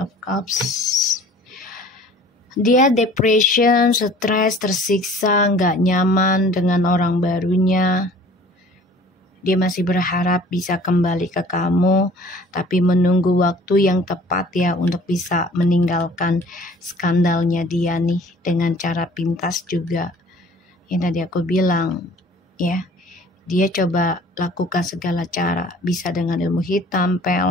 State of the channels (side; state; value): both; normal; correlation 0.50